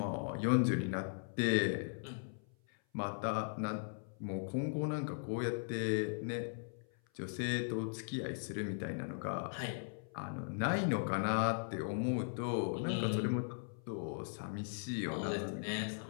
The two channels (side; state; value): right; silent; 52 dB below the other